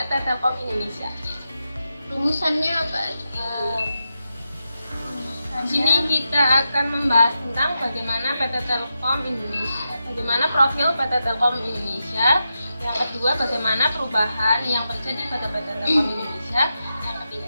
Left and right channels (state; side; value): inverted; both; correlation -0.88